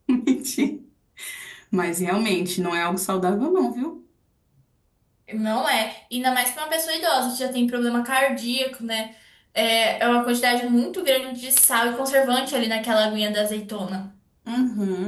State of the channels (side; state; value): both; identical; correlation 1.00